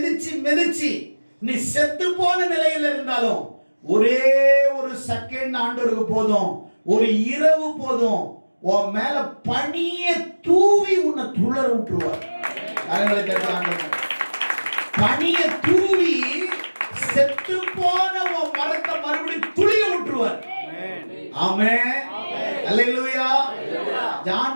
மிதிச்சு நீ செத்து போன நிலையில இருந்தாலும் ஒரே ஒரு செகண்ட் ஆண்டவருக்கு போதும், ஒரு இரவு போதும், உன் மேல பனிய தூவி உன்னை துளர விட்டுருவார். பனிய தூவி செத்து போன உன் மரத்தை மறுபடியும் துளிய விட்டுருவார். ஆமென். அல்லேலூயா.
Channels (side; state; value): both; inverted; correlation -1.00